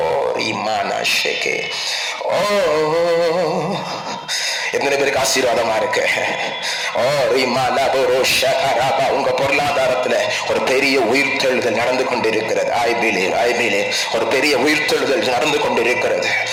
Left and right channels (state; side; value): identical; both; correlation 1.00